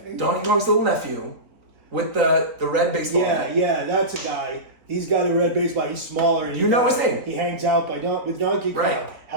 Donkey Kong's little nephew, with the red baseball bat. Yeah, that's a guy. He's got a red baseball. He's smaller. And You know his name. He hangs out with Donkey Kong. Right.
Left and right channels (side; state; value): left; late; 3.8 ms